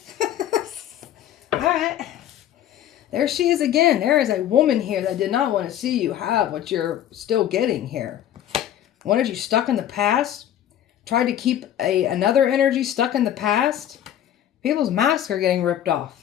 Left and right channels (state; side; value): quieter; right; 11.1 dB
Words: All right. There she is again. There is a woman here that did not want to see you have what you're still getting here. Wanted you stuck in the past. Tried to keep another energy stuck in the past. People's masks are getting ripped